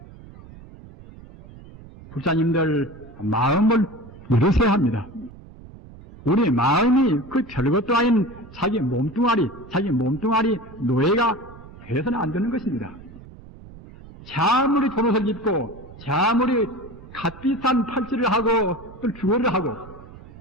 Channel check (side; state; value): right; noise; rumble, 19 dB below the sound